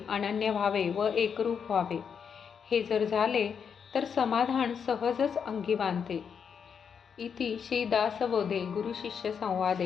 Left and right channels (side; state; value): right; quieter; 6.9 dB